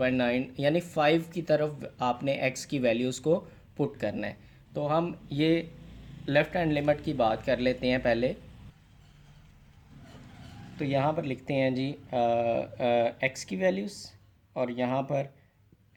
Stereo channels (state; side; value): identical; both; correlation 1.00